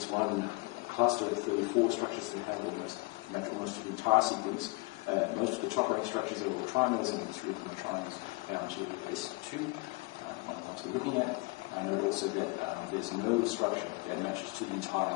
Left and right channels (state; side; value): quieter; right; 28.4 dB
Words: one cluster of 34 structures that have almost of the entire sequence. Most of the top rank structures are all trimers, and three of them are trimers down to ACE2. What we're looking at. Note also that there's no structure that matches to the